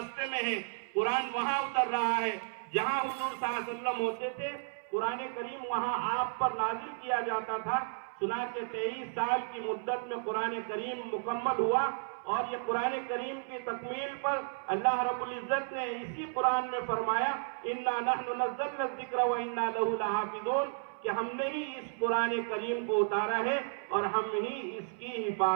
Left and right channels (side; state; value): left; silent; 56 dB below the other